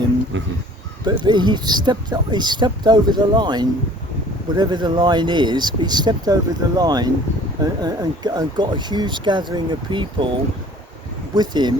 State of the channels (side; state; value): both; normal; correlation 0.50